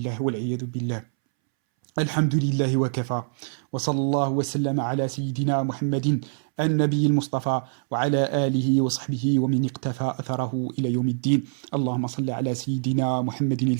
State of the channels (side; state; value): left; silent; 62 dB below the other